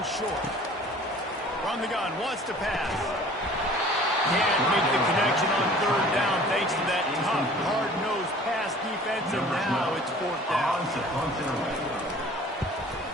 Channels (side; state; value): both; normal; correlation 0.48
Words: short. From the gun, wants to pass. Can't make the connection on 3rd down thanks to that tough, hard-nosed pass defense, and now it's 4th down.